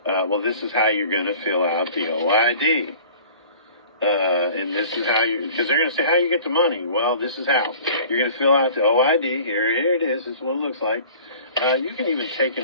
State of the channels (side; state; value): both; inverted; correlation -0.46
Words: Well, this is how you're going to fill out the OID. And this is how because they're going to say, how you get the money? Well, this is how. You're going to fill out the OID. Here it is. This is what it looks like. You can even take an